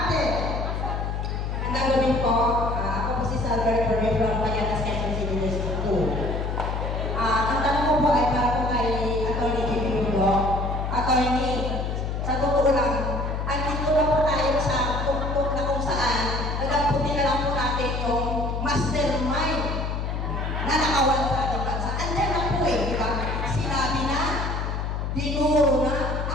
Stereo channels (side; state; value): left; noise; hum, 2 dB below the sound